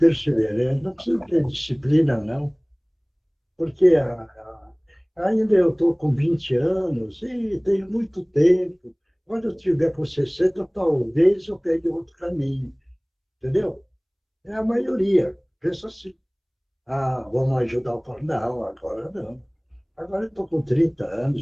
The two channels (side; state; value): both; identical; correlation 1.00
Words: não preciso ter disciplina, não. Porque ainda eu estou com 20 anos e tenho muito tempo. Quando eu tiver com 60, talvez eu pegue outro caminho. Entendeu? É a maioria. Pensa assim. Vamos ajudar o povo. Não, agora não. Agora eu estou com 30